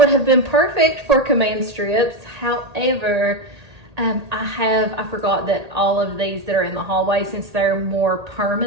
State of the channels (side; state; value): left; late; 1.8 ms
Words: have been perfect for command strips. However, I forgot that all of these that are in the hallway, since they're more